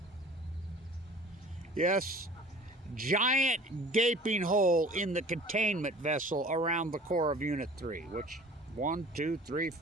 Yes, giant gaping hole in the containment vessel around the core of Unit 3, which 1, 2, 3,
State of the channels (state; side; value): normal; both; correlation 0.44